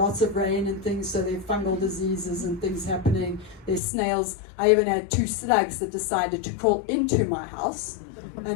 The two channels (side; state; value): right; drops out; at 3.8 s